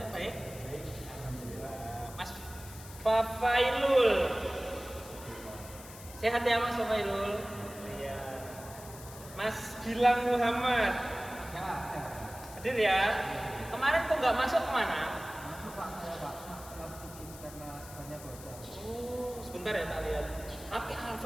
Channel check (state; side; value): noise; left; hiss, 16 dB below the sound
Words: Baik? Alhamdulillah. Mas Fafailul. Sehat ya Mas Fafailul? Iya. Mas Gilang Muhammad. Hadir ya? Kemarin kok nggak masuk kemana? Masuk Pak, saya Pak. Kalau bikin karena banyak bocor. Oh, sebentar ya tak lihat. Tapi